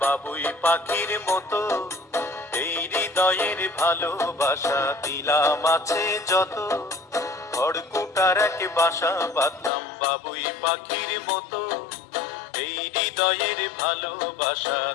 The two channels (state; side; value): drops out; right; at 9.7 s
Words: বাবুই পাখির মতো, এই হৃদয়ের ভালোবাসা দিলাম আছে যত। খড়কুটার এক বাসা বাঁধলাম বাবুই পাখির মতো, এই হৃদয়ের ভালোবাসা